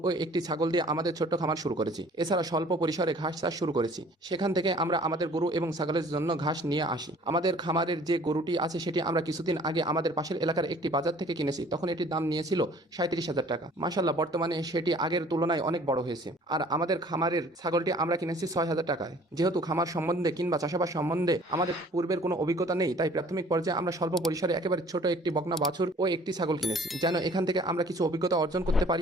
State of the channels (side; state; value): both; normal; correlation 0.52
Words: ও একটি ছাগল দিয়ে আমাদের ছোট্ট খামার শুরু করেছি। এছাড়া স্বল্প পরিসরে ঘাস চাষ শুরু করেছি। সেখান থেকে আমরা আমাদের গরু এবং ছাগলের জন্য ঘাস নিয়ে আসি। আমাদের খামারের যে গরুটি আছে সেটি আমরা কিছুদিন আগে আমাদের পাশের এলাকার একটি বাজার থেকে কিনেছি। তখন এটির দাম নিয়েছিল 37,000 টাকা। মাশাআল্লাহ, বর্তমানে সেটি আগের তুলনায় অনেক বড় হয়েছে। আর আমাদের খামারের ছাগলটি আমরা কিনেছি 6,000 টাকায়। যেহেতু খামার সম্বন্ধে কিংবা চাষাবাদ সম্বন্ধে আমাদের পূর্বের কোনো অভিজ্ঞতা নেই, তাই প্রাথমিক পর্যায়ে আমরা স্বল্প পরিসরে একেবারে ছোট একটি বকনা বাছুর ও একটি ছাগল কিনেছি, যেন এখান থেকে আমরা কিছু অভিজ্ঞতা অর্জন করতে